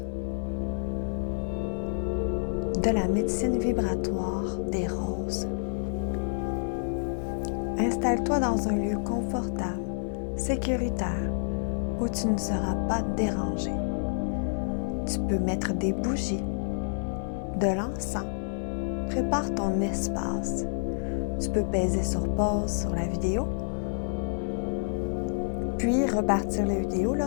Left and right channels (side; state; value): right; silent; digital silence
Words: de la médecine vibratoire des roses. Installe-toi dans un lieu confortable, sécuritaire, où tu ne seras pas dérangé. Tu peux mettre des bougies, de l'encens, prépare ton espace. Tu peux peser sur pause sur la vidéo, puis repartir la vidéo